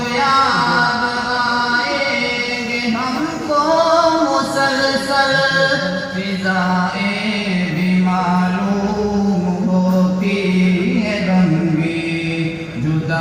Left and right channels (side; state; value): both; identical; correlation 1.00